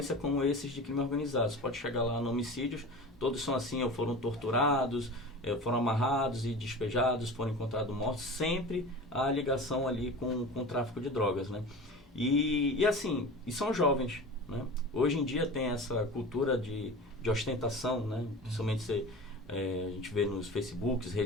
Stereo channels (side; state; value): both; normal; correlation 0.34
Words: como esses de crime organizado. Você pode chegar lá no homicídios, todos são assim, ou foram torturados, foram amarrados e despejados, foram encontrados mortos. Sempre há ligação ali com o tráfico de drogas, né? E assim, e são jovens, né? Hoje em dia tem essa cultura de ostentação, né? Principalmente a gente vê nos Facebooks,